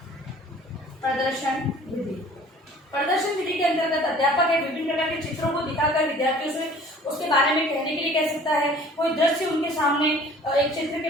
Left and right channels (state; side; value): normal; both; correlation 0.50